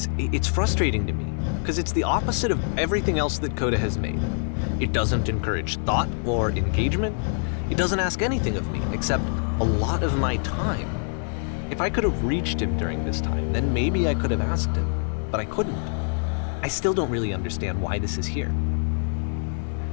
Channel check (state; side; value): silent; right; 60 dB below the other